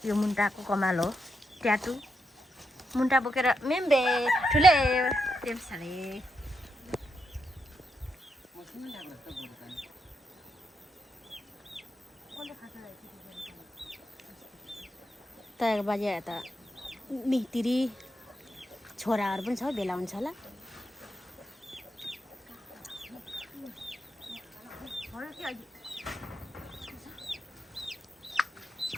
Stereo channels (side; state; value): both; normal; correlation 0.83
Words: यो मुन्टाको कमाल हो ट्याटु मुन्टा बोकेर मेम्बे ठुले टेम्साले तयार बाजे त मितिरी छोराहरू पनि छ भेला हुन्छ होला